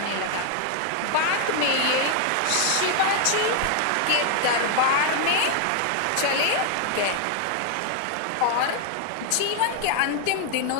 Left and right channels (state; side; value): different; both; correlation 0.00